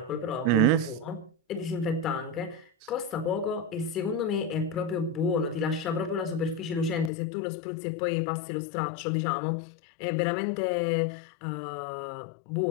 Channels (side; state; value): right; drops out; at 7.1 s